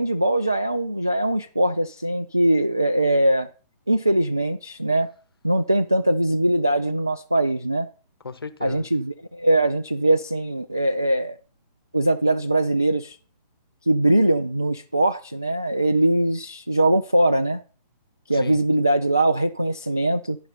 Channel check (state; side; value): inverted; both; correlation -0.91